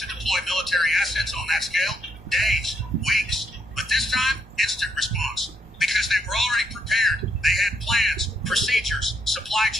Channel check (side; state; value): both; normal; correlation 0.75